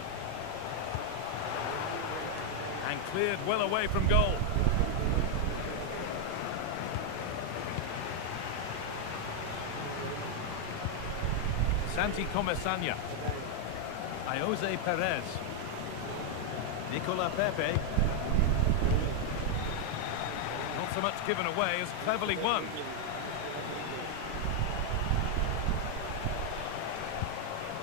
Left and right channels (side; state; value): both; different; correlation 0.00